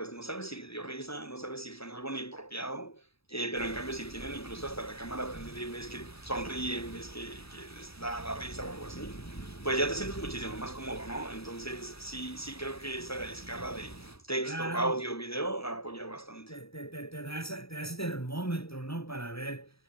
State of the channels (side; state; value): right; late; 0.77 ms